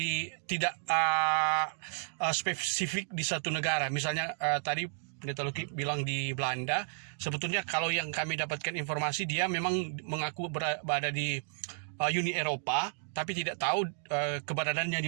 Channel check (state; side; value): silent; left; digital silence